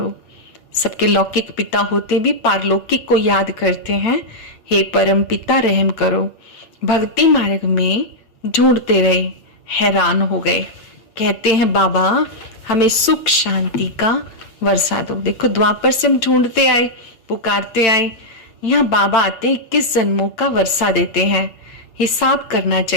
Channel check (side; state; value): right; late; 9.0 ms